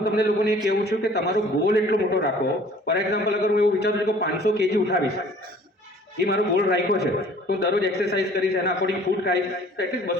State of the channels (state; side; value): normal; both; correlation 0.52